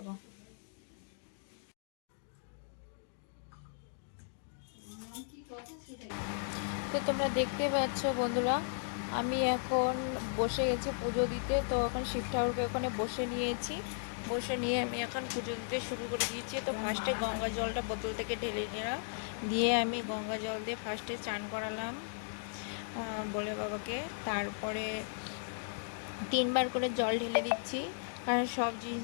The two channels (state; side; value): silent; right; digital silence